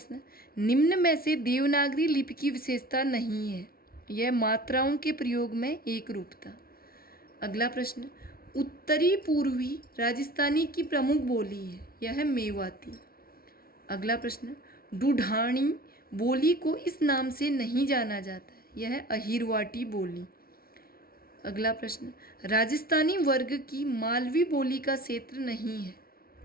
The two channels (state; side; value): late; right; 0.44 ms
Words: निम्न में से देवनागरी लिपि की विशेषता नहीं है, यह मात्राओं के प्रयोग में एक रूपता। अगला प्रश्न, उत्तरी पूर्वी राजस्थानी की प्रमुख बोली है, यह है मेवाती। अगला प्रश्न, ढूढ़ानी बोली को इस नाम से नहीं जाना जाता है, यह है अहिरवाटी बोली। अगला प्रश्न, राजस्थानी वर्ग की मालवी बोली का क्षेत्र नहीं है,